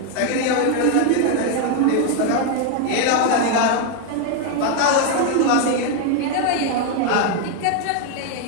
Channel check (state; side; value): different; both; correlation 0.01